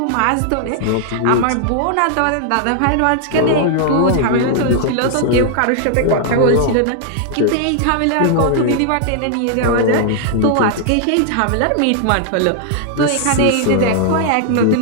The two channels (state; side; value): different; both; correlation 0.00